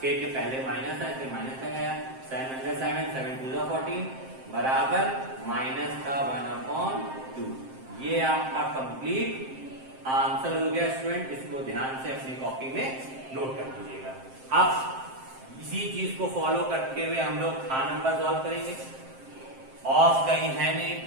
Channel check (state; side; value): late; left; 7.6 ms